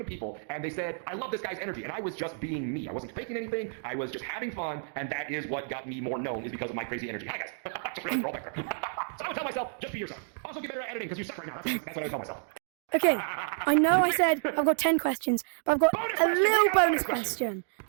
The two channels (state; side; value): silent; left; digital silence